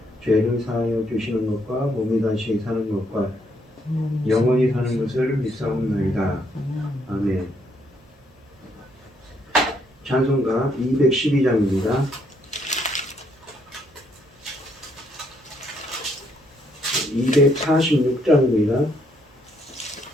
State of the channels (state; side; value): normal; both; correlation 0.72